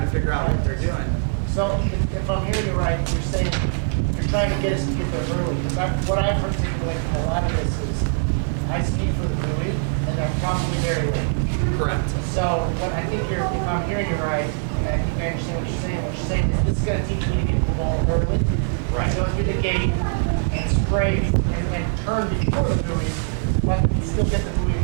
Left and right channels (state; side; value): silent; left; digital silence